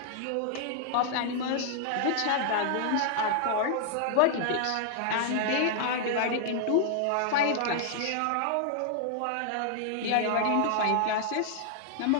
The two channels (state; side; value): different; both; correlation -0.01